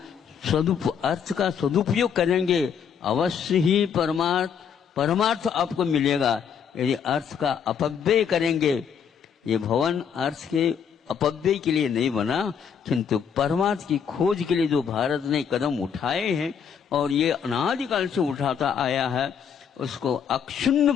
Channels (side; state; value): right; quieter; 7.4 dB